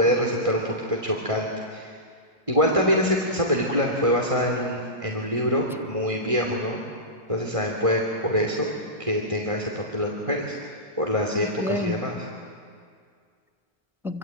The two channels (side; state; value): left; late; 1.6 ms